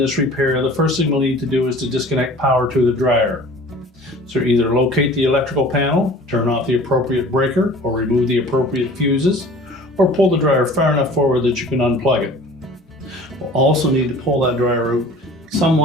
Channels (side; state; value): both; normal; correlation 0.45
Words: repair, the first thing we'll need to do is to disconnect power to the dryer. So either locate the electrical panel, turn off the appropriate breaker, or remove the appropriate fuses, or pull the dryer far enough forward that you can unplug it. We'll also need to pull that dryer out